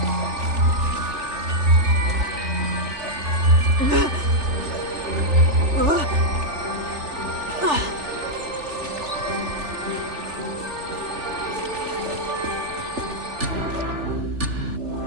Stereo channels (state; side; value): late; left; 3.4 ms